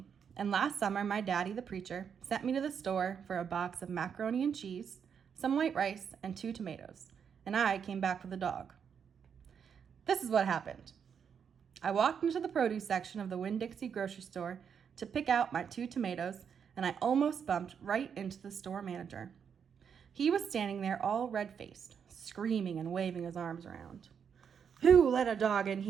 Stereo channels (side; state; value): left; quieter; 7.3 dB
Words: and last summer my daddy, the preacher, sent me to the store for a box of macaroni and cheese, some white rice, and 2 tomatoes, and I came back with a dog. This is what happened. I walked into the produce section of the Winn-Dixie grocery store to pick out my 2 tomatoes, and I almost bumped right into the store manager. He was standing there all red-faced, screaming and waving his arms around. "Who let a dog in